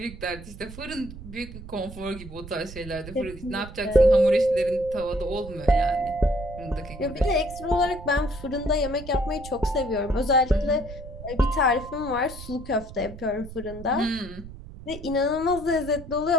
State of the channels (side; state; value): right; noise; rumble, 14 dB below the sound